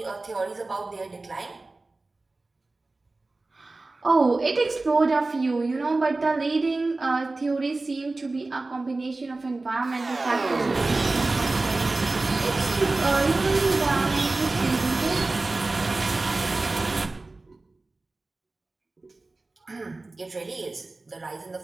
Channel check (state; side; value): quieter; left; 3.3 dB